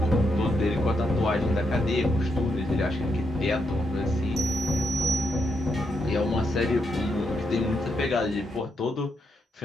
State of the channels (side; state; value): both; normal; correlation 0.80